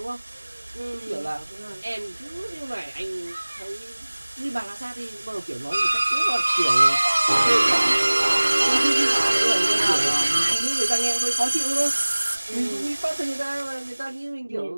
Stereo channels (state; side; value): inverted; both; correlation -1.00